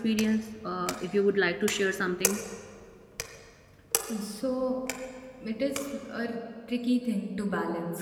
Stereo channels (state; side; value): identical; both; correlation 1.00